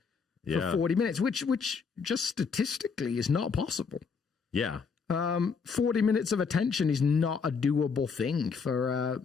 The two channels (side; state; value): right; quieter; 5.5 dB